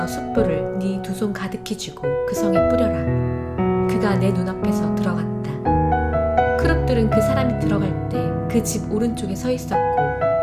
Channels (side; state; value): both; identical; correlation 1.00